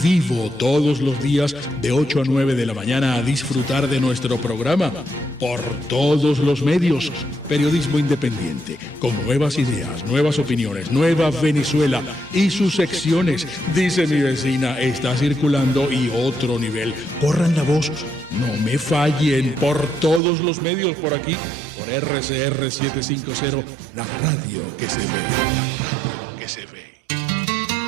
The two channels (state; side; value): drops out; left; at 20.2 s